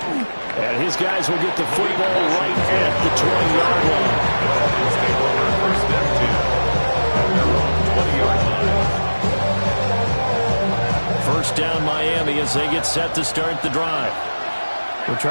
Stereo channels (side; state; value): both; inverted; correlation -1.00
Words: And his guys will get the football right at the 20-yard line. First down Miami as they get set to start the drive. Well,